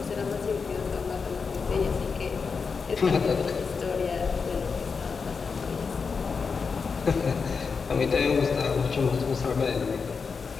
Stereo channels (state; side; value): quieter; right; 5.3 dB